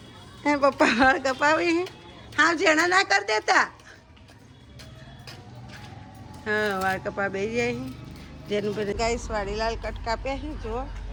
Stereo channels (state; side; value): identical; both; correlation 1.00